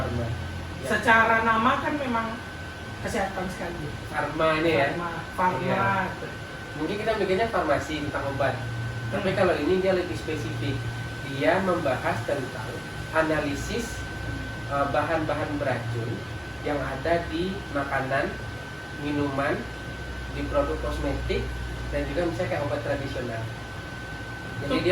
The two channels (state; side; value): identical; both; correlation 1.00